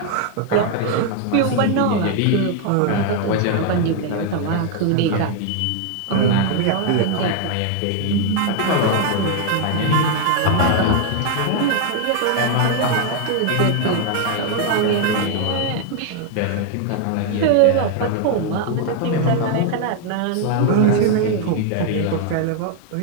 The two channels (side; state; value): both; different; correlation 0.00